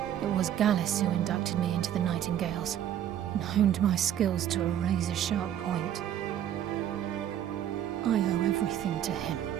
It was Gallus who inducted me into the Nightingales, and honed my skills to a razor-sharp point. I owe everything to him.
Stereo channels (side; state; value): left; quieter; 10.6 dB